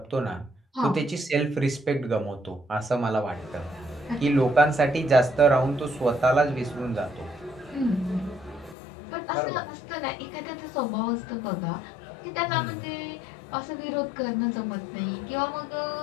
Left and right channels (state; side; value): drops out; right; at 8.8 s